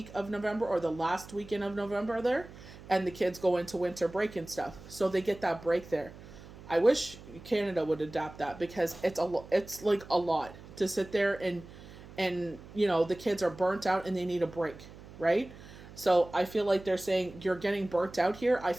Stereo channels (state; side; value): noise; right; hum, 17 dB below the sound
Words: of November or the last weekend of November there. And the kids go into winter break and stuff. So they get that break there. I wish Canada would adapt that, because it's like a lot to sit there and the kids are burnt out and they need a break, right? So I feel like they're saying you're getting burnt out here. I